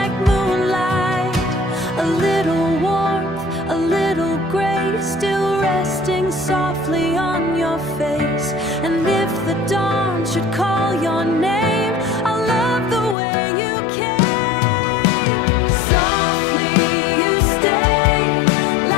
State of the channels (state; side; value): drops out; right; at 13.2 s